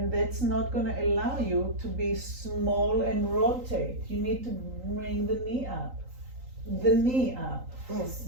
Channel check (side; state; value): left; late; 3.8 ms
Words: that's not going to allow you to be small and rotate. You need to bring the knee up. The knee up. This.